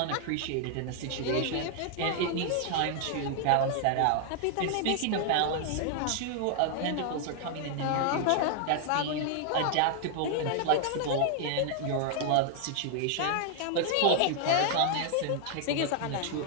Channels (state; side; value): different; both; correlation 0.00